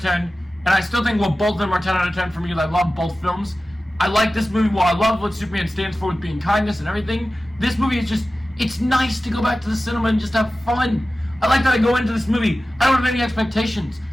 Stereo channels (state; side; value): normal; both; correlation 0.95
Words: 10, and I still think, well, both of them are 10 out of 10 for me, because I love both films. I like this movie, while I love what Superman stands for with being kindness and everything. This movie is just, it's nice to go back to the cinema and just have fun. I like that I go into this movie, I don't have any expectations.